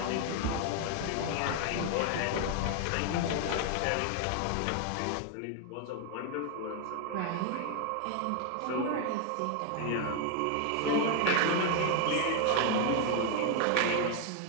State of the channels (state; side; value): different; both; correlation 0.01